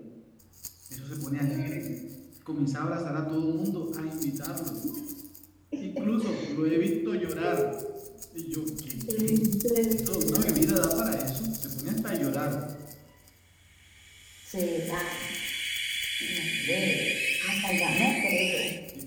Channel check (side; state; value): both; identical; correlation 1.00